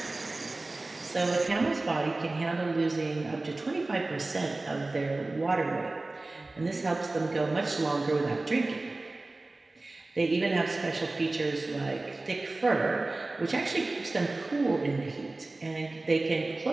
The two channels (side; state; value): left; quieter; 3.1 dB